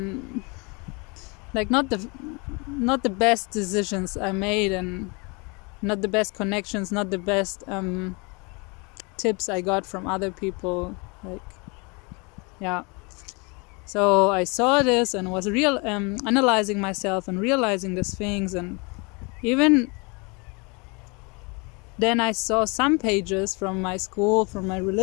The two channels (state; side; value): quieter; right; 29.8 dB